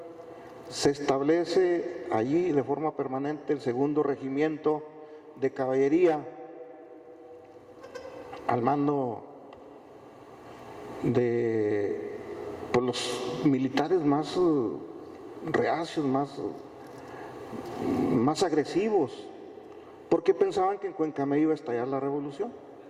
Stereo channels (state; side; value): identical; both; correlation 1.00